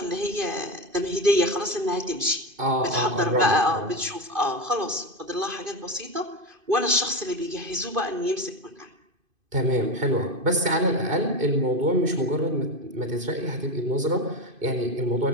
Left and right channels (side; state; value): left; late; 2.5 ms